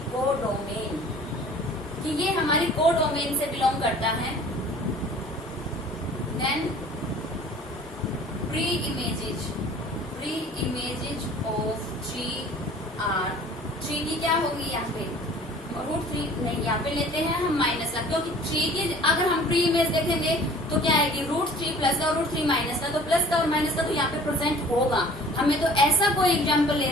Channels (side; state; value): both; normal; correlation 0.48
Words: कोडोमेन, कि ये हमारी कोडोमेन से बिलोंग करता है। Then pre images of 3R। 3 की क्या होगी यहाँ पे? √3 नहीं, यहाँ पे लेते हैं हम माइनस का, क्योंकि 3 की अगर हम प्री इमेज देखेंगे तो क्या आएगी? √3 प्लस का और √3 माइनस का। तो प्लस का और माइनस का तो यहाँ पे प्रेजेंट होगा। हमें तो ऐसा कोई एग्जाम्पल